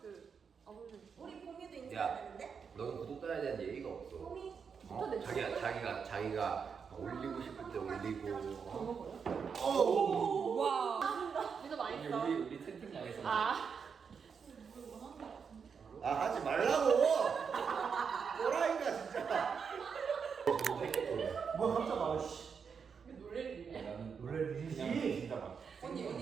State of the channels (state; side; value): quieter; left; 6.2 dB